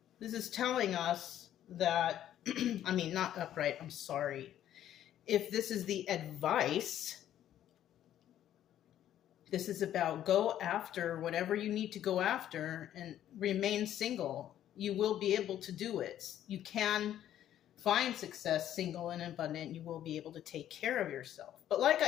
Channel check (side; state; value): right; quieter; 11.5 dB